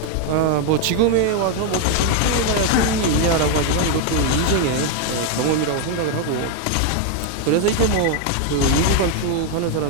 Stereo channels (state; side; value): different; both; correlation 0.01